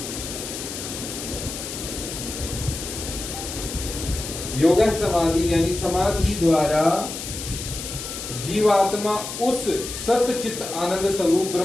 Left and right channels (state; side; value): noise; left; hiss, 8 dB below the sound